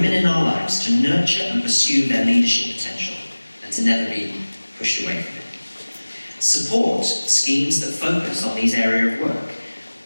in our lives to nurture and pursue their leadership potential and to never be pushed away from it. Support schemes that focus on these areas of work.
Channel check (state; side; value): inverted; both; correlation -1.00